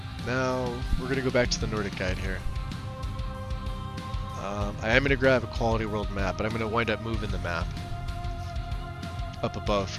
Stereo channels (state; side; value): identical; both; correlation 1.00